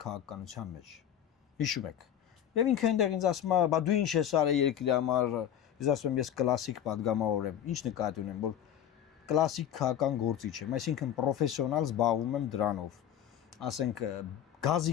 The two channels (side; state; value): right; quieter; 10.1 dB